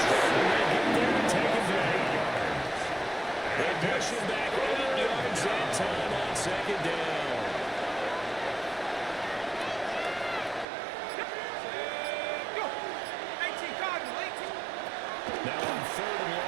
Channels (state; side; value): drops out; left; at 10.7 s